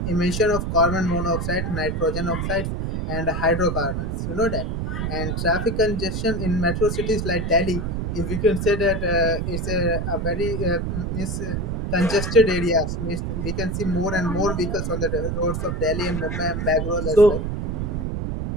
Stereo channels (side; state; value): right; noise; rumble, 2 dB below the sound